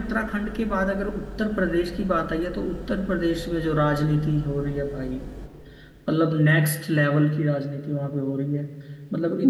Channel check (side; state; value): both; identical; correlation 1.00